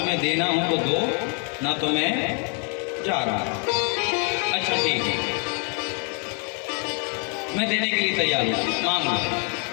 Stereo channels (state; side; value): quieter; right; 37.9 dB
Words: देना हो तो दो, ना तो मैं जा रहा। अच्छा ठीक है, मैं देने के लिए तैयार हूँ, मांग लो।